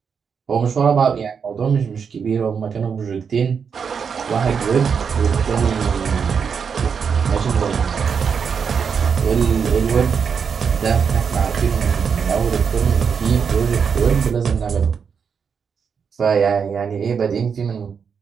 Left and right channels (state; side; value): quieter; left; 6.4 dB